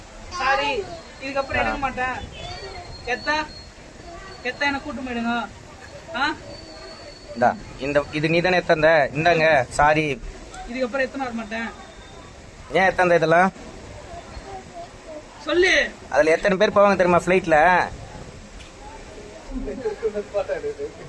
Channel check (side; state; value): both; identical; correlation 1.00